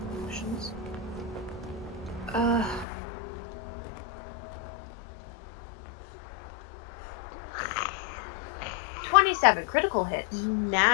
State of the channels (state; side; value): drops out; right; at 2.9 s